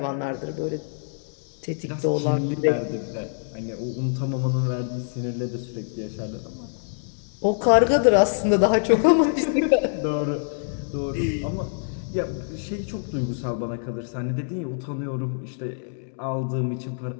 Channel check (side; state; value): right; silent; digital silence